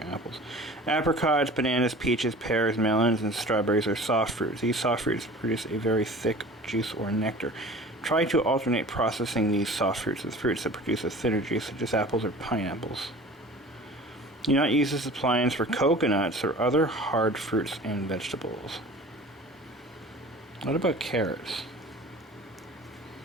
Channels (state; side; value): normal; both; correlation 0.42